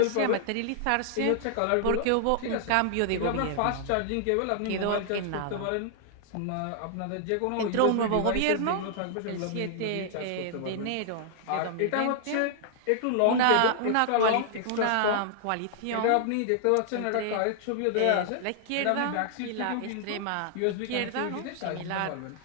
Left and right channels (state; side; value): different; both; correlation -0.01